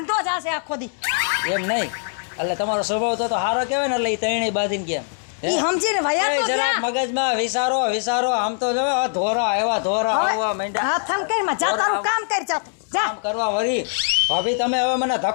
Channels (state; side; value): silent; right; digital silence